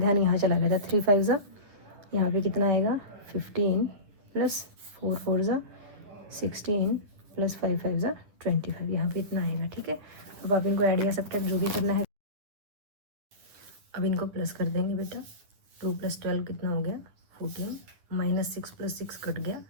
यहाँ चला गया था। 3 5 ज़ा, यहाँ पे कितना आएगा 15 प्लस 4 4 ज़ा 16 प्लस 5 5 ज़ा 25, यहाँ पे इतना आएगा। ठीक है, अब आप इनको ऐड या सब्ट्रैक्ट जो भी करना है। अब इनको प्लस कर देंगे बेटा। 2 + 12 कितना हो गया 14, -6 + 6 कट गया,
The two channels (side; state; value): left; late; 10 ms